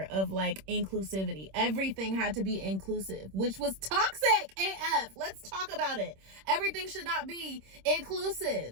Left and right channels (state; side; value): late; left; 26 ms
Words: of like inclusivity. Everything had to be inclusive, which was toxic AF. Let's talk about it. Everything should not be